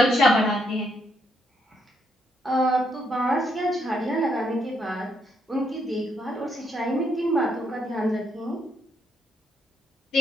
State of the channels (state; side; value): normal; both; correlation 0.75